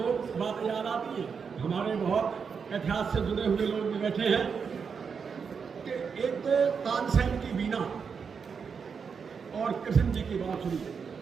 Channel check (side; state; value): left; quieter; 6.1 dB